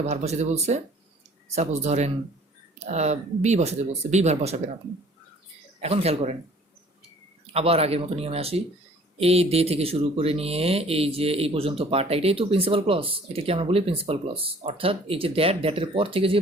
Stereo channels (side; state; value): both; normal; correlation 0.53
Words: ভার্ব বসাতে বলছে, সাপোজ ধরেন বি বসাতে বলছে, বি ভার্ব বসাবেন আপনি। এখন খেয়াল করেন, আবার আগের মতো নিয়মে আসি। এই দে থেকে শুরু করে নিয়ে এই যে এই পর্যন্ত পার্টটা, এটাই তো প্রিন্সিপাল ক্লজ, এটাকে আমরা বলি প্রিন্সিপাল ক্লজ। অর্থাৎ এই যে দ্যাটের পর থেকে যে